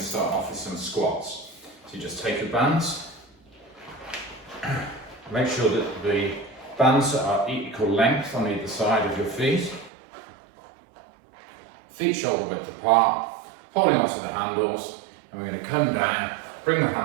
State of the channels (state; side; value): drops out; left; at 9.9 s